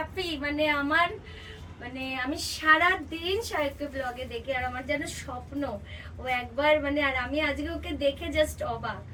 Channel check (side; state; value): both; identical; correlation 1.00